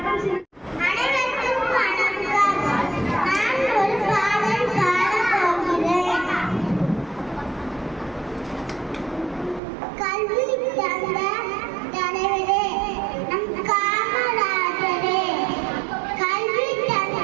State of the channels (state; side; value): drops out; left; at 9.6 s